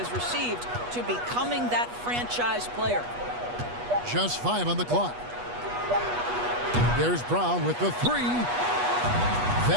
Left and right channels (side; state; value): left; late; 8.3 ms